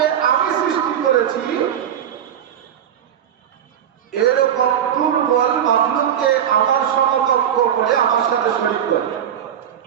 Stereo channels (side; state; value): left; quieter; 9.5 dB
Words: আমি সৃষ্টি করেছি এরকম দুর্বল মাখলুককে আমার সমকক্ষ করে আমার সাথে শরীক করে।